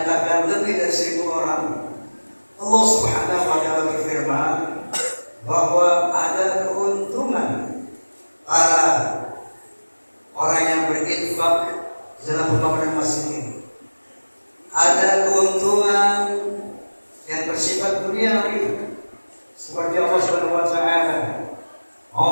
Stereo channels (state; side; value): inverted; both; correlation -1.00